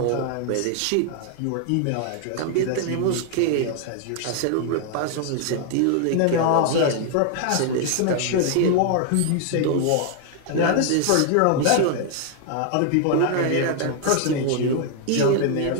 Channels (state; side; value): different; both; correlation 0.00